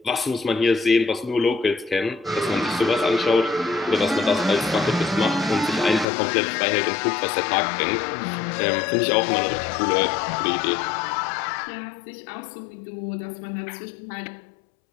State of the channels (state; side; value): drops out; right; at 6.1 s